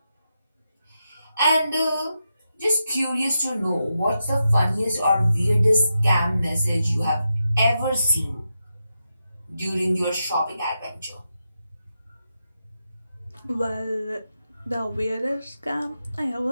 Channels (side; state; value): both; inverted; correlation -0.87